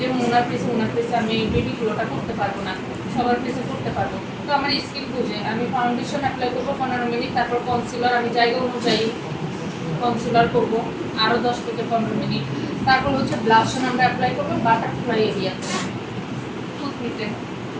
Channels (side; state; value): both; identical; correlation 1.00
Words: ওনার ফেসে আমি বেবি গ্লোটা করতে পারবো না, সবার ফেসে করতে পারবো। তো আমার স্কিন বুঝে আমি ফাউন্ডেশন অ্যাপ্লাই করবো 15 মিনিট, তারপর কনসিলার আমি জায়গা অনুযায়ী কনসিলার করবো আরও 10 থেকে 15 মিনিট। তারপর হচ্ছে ব্লাশন আমরা অ্যাপ্লাই করবো বাটারফ্লাই এরিয়াতে, টুথপিকে